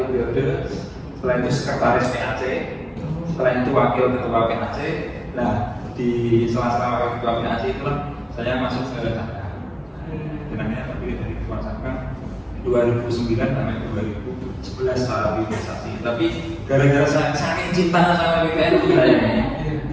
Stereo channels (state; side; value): identical; both; correlation 1.00